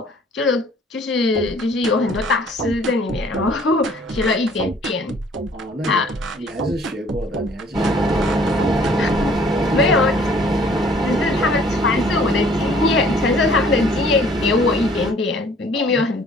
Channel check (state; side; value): normal; both; correlation 0.56